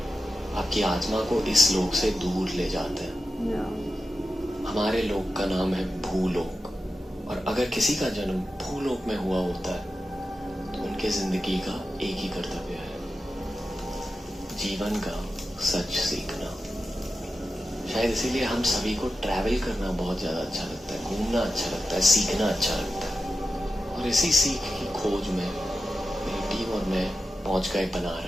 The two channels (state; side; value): normal; both; correlation 0.91